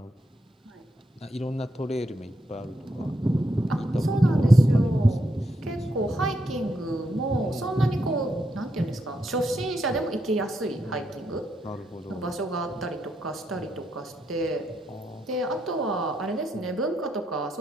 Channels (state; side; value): normal; both; correlation 0.80